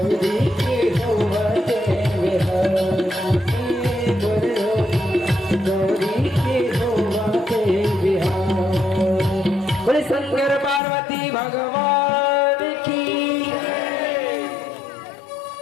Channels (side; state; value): right; drops out; at 10.8 s